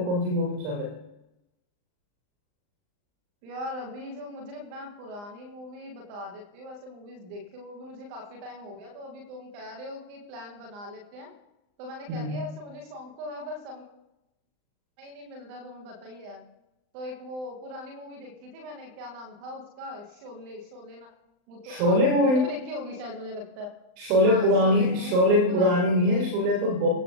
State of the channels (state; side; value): late; left; 39 ms